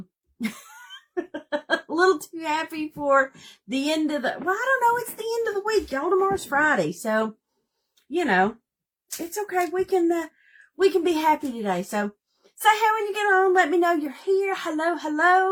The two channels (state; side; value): identical; both; correlation 1.00